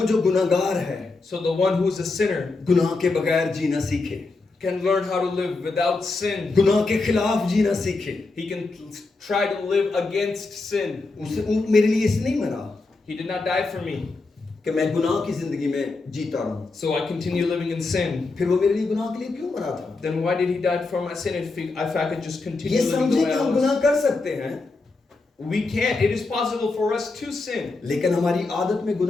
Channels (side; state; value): right; quieter; 3.6 dB